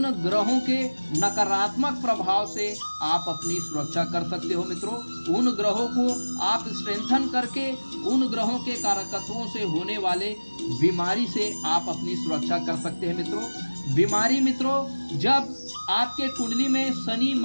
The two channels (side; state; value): both; inverted; correlation -1.00